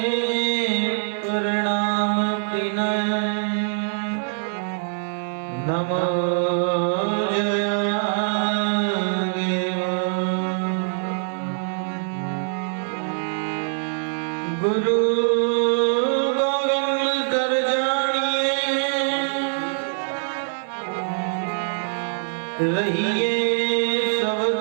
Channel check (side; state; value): left; silent; 63 dB below the other